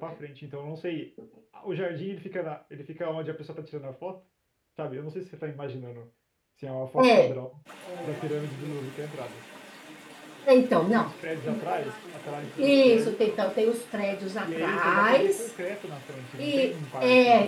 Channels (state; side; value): identical; both; correlation 1.00